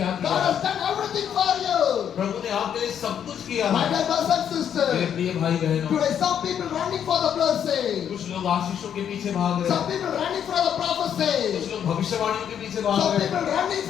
God किया? has done everything for you. प्रभु ने आपके लिए सब कुछ किया My है। dear brothers and मेरे sisters, प्रिय भाई बहनों, today some people running for the blessing. कुछ लोग आशीषों के पीछे भाग रहे Some हैं, people running for the prophecy. कुछ लोग भविष्यवाणियों के पीछे भाग Some रहे हैं, people running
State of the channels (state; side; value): quieter; right; 8.9 dB